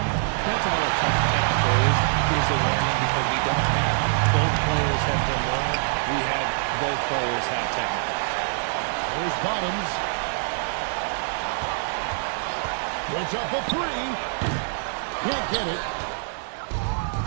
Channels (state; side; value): silent; left; digital silence